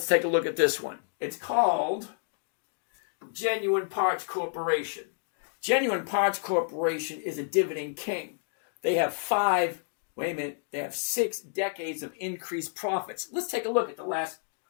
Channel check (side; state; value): right; silent; digital silence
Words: take a look at this one. It's called Genuine Parts Corporation. Genuine Parts Corporation is a dividend king. They have 6 decades of increased profits. Let's take a look at the last